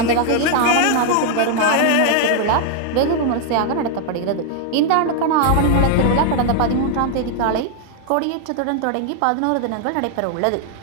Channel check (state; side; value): different; both; correlation 0.00